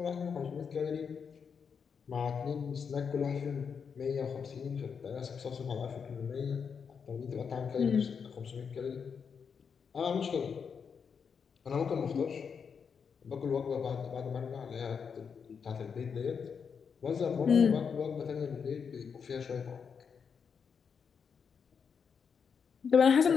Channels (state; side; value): quieter; right; 6.4 dB